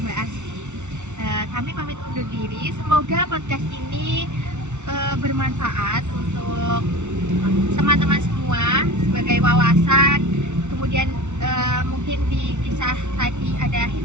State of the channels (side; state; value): left; late; 0.83 ms